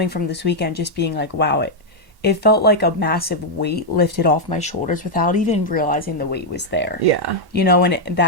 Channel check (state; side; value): late; left; 1.1 ms